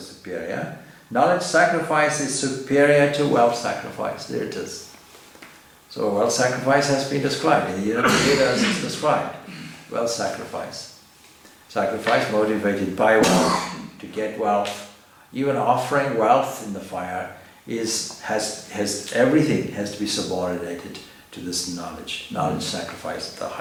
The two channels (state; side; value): identical; both; correlation 1.00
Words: superior? Knowledge sacrifice is superior to wealth sacrifice. There it is. So wealth sacrifice has been described. In the Vedas it's described. Wealth sacrifice. Sacrifice motivated by wealth, to get wealth. Even offering wealth in the fire has everything has to be subordinated to this knowledge. Knowledge sacrifice at the